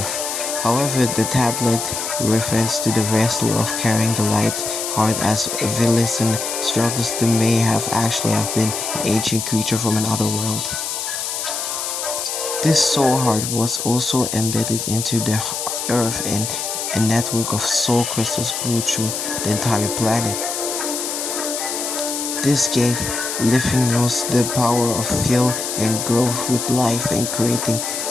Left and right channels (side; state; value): left; noise; hiss, 4 dB below the sound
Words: However, the tablet refers to the vessel of carrying the light heart as villains and struggles to may have actually have been an ancient creature from another world. This soul heart was also embedded into the earth and a network of soul crystals grew through the entire planet. This gave Lithinos the power of fill and growth with life and creating